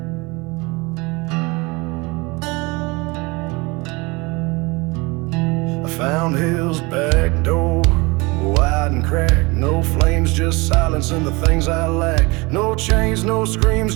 Found hell's back door, wide and cracked. No flames, just silence and the things I lack. No chains, no screams,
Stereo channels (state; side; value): quieter; left; 25.7 dB